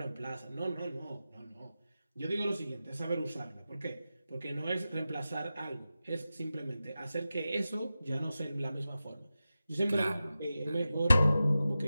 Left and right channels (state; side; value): inverted; both; correlation -0.93